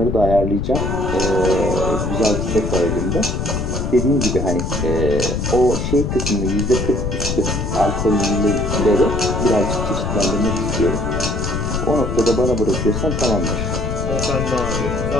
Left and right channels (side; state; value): left; noise; rumble, 2 dB below the sound